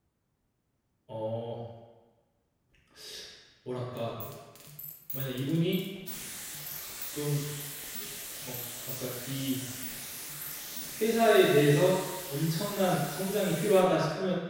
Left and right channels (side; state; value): both; identical; correlation 1.00